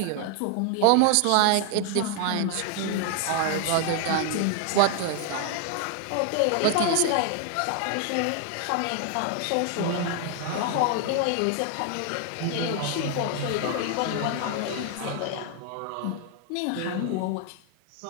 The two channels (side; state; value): both; different; correlation 0.00